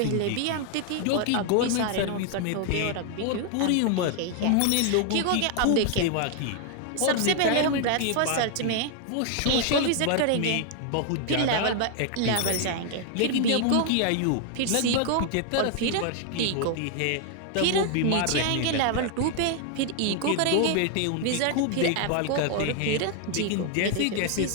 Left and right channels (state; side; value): different; both; correlation 0.00